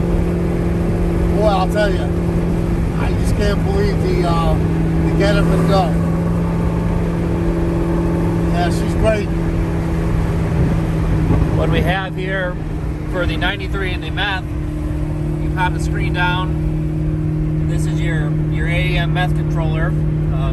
Boy, I'll tell you, I just can't believe the get up and go. Yeah, she's great. What we have here for the 93 and the meth, you pop the screen down. This is your AEM meth controller.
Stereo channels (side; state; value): both; identical; correlation 1.00